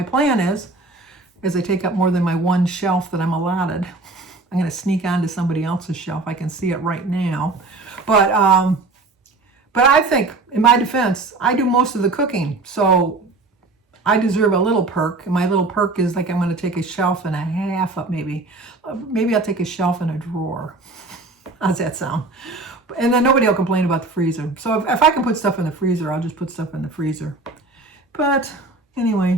plan is, as they take up more than my one shelf that I'm allotted. I'm going to sneak onto somebody else's shelf. I can see it right now. But I think, in my defense, I do most of the cooking. So I deserve a little perk. And my little perk is like I'm going to take a shelf and a half up maybe. Maybe I'll take a shelf and a drawer. How's that sound? And then nobody will complain about the freezer. So if I can put stuff in the freezer, I'll just put stuff in the freezer. But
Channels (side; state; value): left; quieter; 3.4 dB